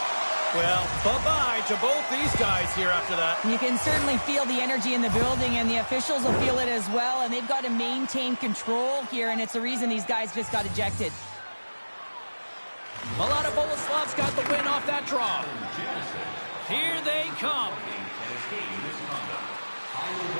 Well, bye-bye to both these guys here after that. You can certainly feel the energy in the building, and the officials will feel it as well. And they've got to maintain control here, and it's the reason these guys just got ejected. Mladá Boleslav's got the win off that draw. Here they come.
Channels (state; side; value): inverted; both; correlation -1.00